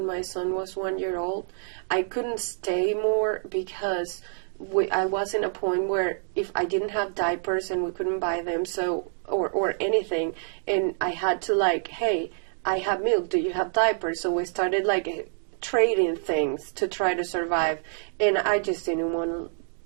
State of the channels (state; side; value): silent; left; digital silence